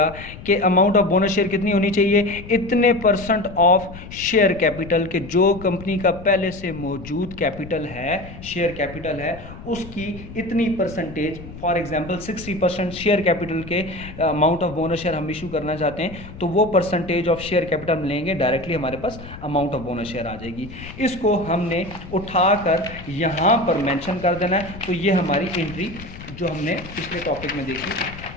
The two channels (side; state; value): left; noise; rumble, 14 dB below the sound